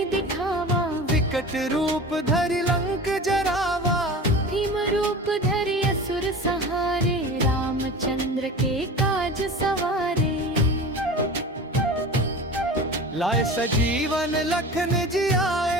दिखावा, विकट रूप धरि लंक जरावा। भीम रूप धरि असुर सहारे, रामचंद्र के काज सवारे। लाए सजीवन लखन जी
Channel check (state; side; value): normal; both; correlation 0.34